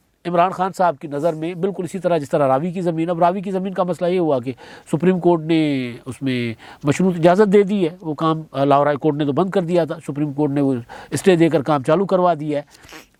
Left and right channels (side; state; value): both; identical; correlation 1.00